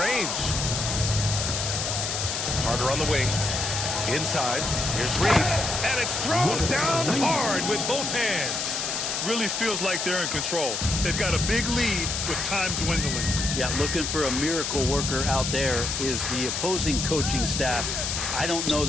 Carter on the wing. Inside. Here's Reed. And it's thrown down hard with both hands. Really feels like they're in control. They've got a big lead with time dwindling. Yeah, looking for a miracle worker out there is the opposing coaching staff. I don't know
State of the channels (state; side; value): noise; left; hiss, 2 dB below the sound